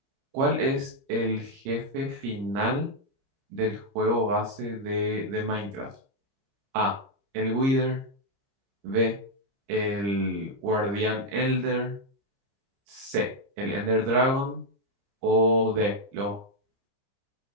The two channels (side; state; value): left; late; 30 ms